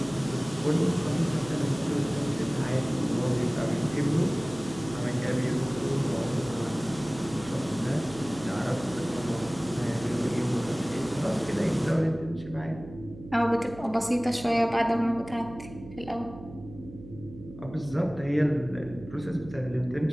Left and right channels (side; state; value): right; noise; hum, 16 dB below the sound